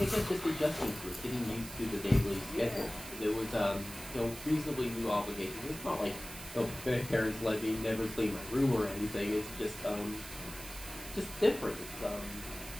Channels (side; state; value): right; noise; hiss, 12 dB below the sound